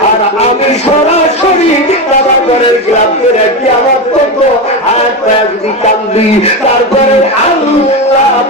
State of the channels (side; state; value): both; normal; correlation 0.16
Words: আর আমি সরাসরি বাবা ঘরের গ্লাভ করে কিয়ামত পর্যন্ত হাত পায়ে যদি কান্দি তারপরে আল্লাহ